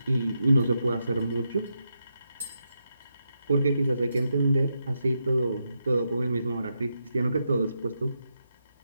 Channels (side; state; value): both; inverted; correlation -0.84